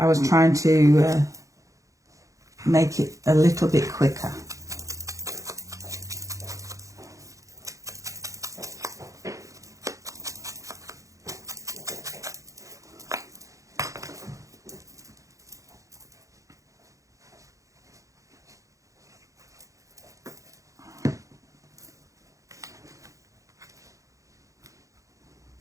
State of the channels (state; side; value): late; left; 0.16 ms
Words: was trying to make it a little bit quicker.